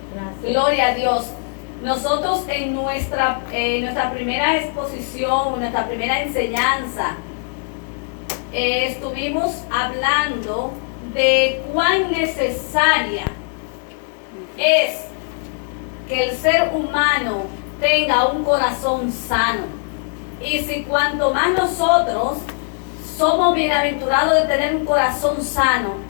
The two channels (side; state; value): right; silent; 66 dB below the other